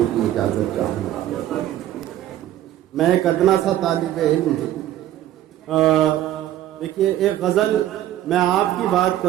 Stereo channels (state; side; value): quieter; left; 12.9 dB